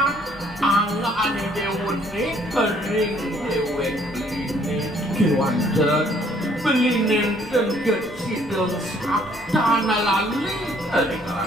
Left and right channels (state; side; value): normal; both; correlation 0.63